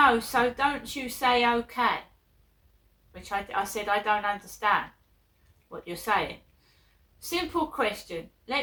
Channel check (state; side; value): identical; both; correlation 1.00